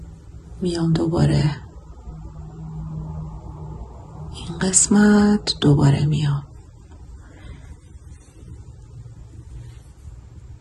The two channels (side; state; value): both; identical; correlation 1.00